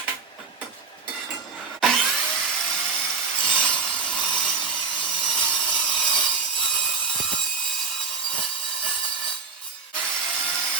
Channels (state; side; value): quieter; left; 4.7 dB